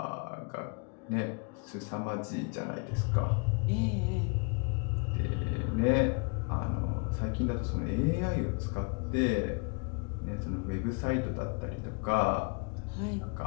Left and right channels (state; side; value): quieter; right; 34.3 dB